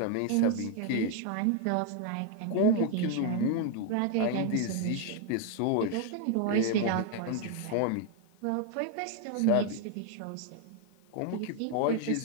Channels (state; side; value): different; both; correlation 0.01